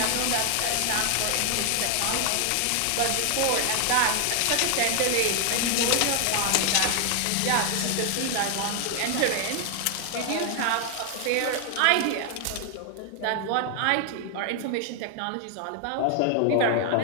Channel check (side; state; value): both; different; correlation 0.00